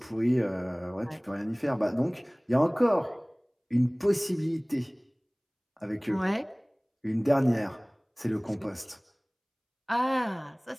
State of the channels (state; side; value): identical; both; correlation 1.00